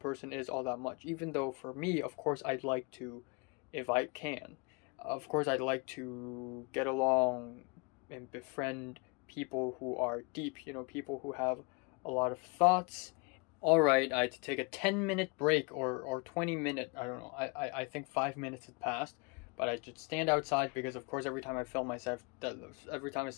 is all that much. Even though for me, of course, I'd like to, if I can, of course, I'd like to get along and befriend people who are deep, people who have a lot of thoughts. Alright, I had to take a 10-minute break or 20-minute, I don't know, I think 5 minutes had passed. But I just stand outside because, of course, every time I film myself, there's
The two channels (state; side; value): quieter; right; 30.5 dB